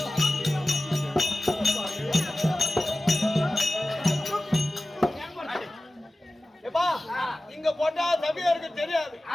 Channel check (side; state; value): both; normal; correlation 0.96